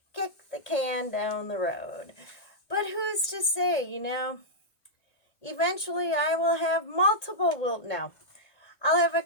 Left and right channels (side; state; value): right; late; 1.8 ms